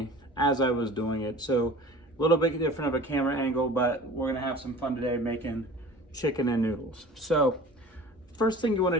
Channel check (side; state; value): both; normal; correlation 0.42